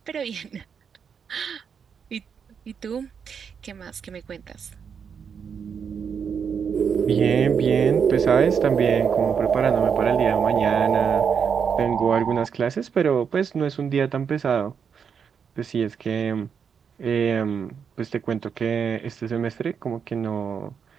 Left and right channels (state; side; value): quieter; left; 6.9 dB